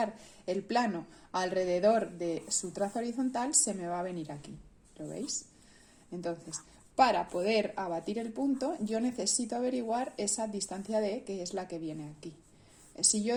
el plano alrededor de su traza horizontal, se me va a venir aquí. ¿Lo veis? Entonces, para poder abatir el punto, yo necesito averiguar esa distancia D, que es la que viene aquí. Si yo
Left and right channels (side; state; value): both; identical; correlation 1.00